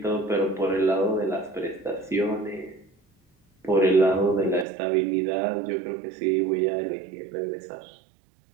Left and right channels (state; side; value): drops out; left; at 4.7 s